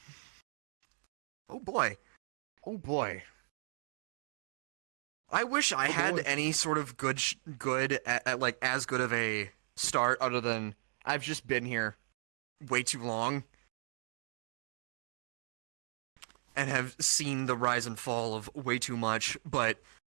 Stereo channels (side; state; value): left; silent; digital silence